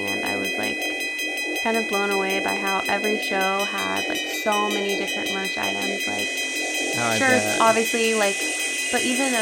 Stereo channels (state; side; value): identical; both; correlation 1.00